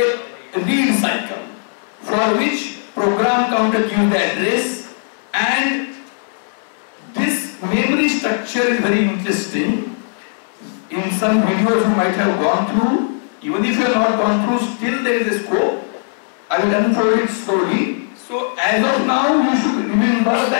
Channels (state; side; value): silent; right; digital silence